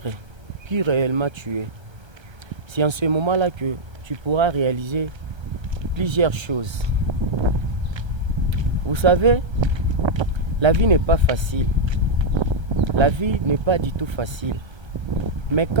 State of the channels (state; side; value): late; left; 1.3 ms